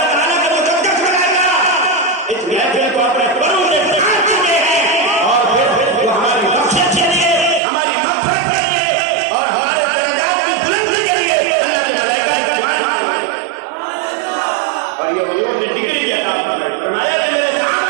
ताला का मुकद्दस बनाया इस महफिल को अपने परों से ढांक चुके हैं और फिर वो हमारी बख्शिश के लिए, हमारी मग़फ़िरत के लिए और हमारे दर्जात की बुलंदी के लिए अल्लाह के मलाइका की दुआएं मांग रहे हैं। और ये हुजूर ने डिग्री की अता फरमाई, फरमाया मेरे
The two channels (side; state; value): left; drops out; at 7.6 s